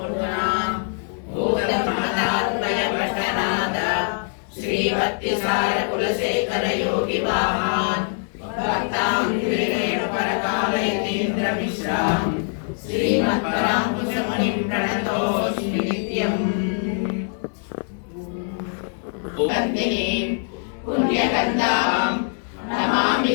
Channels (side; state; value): right; silent; 58 dB below the other